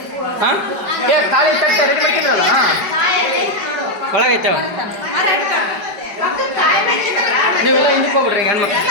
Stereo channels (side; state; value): left; late; 5.1 ms